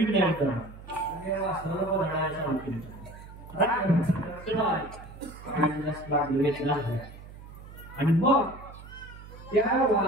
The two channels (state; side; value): noise; right; hum, 16 dB below the sound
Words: नाही करणार. वासराला बदलायला चालू केलं. आणि मग त्या